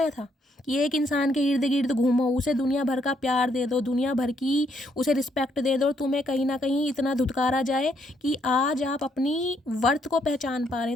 था कि एक इंसान के इर्द गिर्द घूमो, उसे दुनिया भर का प्यार दे दो, दुनिया भर की उसे रिस्पेक्ट दे दो, और तुम्हें कहीं ना कहीं इतना धुतकारा जाए कि आज आप अपनी वर्थ को पहचान पा रहे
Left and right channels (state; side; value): normal; both; correlation 0.72